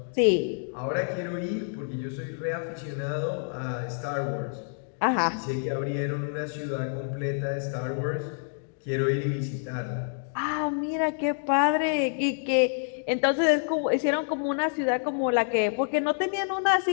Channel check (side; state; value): right; silent; digital silence